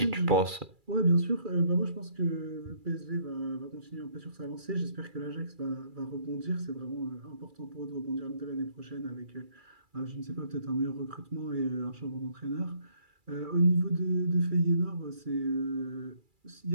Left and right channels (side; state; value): left; late; 2.3 ms